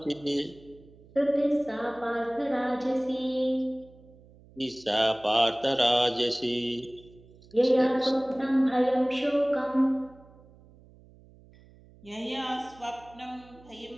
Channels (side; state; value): right; noise; hum, 25 dB below the sound